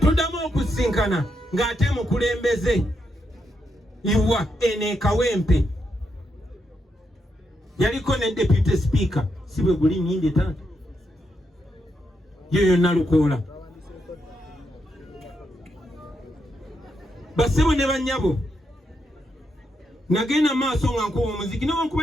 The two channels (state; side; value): normal; both; correlation 0.82